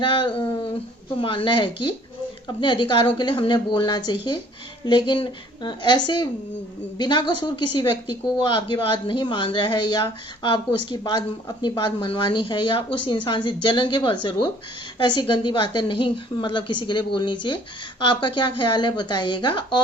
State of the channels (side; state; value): both; normal; correlation 0.56